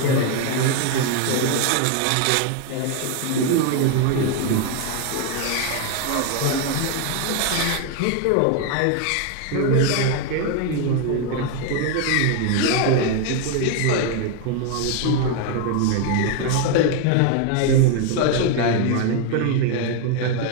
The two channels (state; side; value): different; both; correlation 0.01